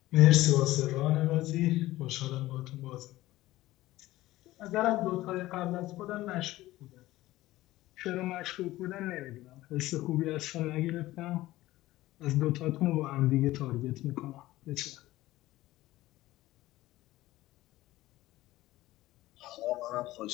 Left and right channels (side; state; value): right; quieter; 16.8 dB